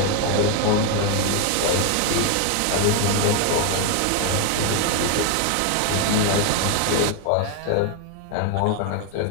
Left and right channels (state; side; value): different; both; correlation 0.01